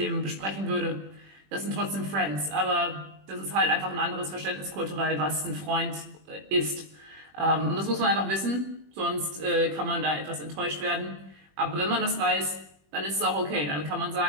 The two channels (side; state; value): left; late; 21 ms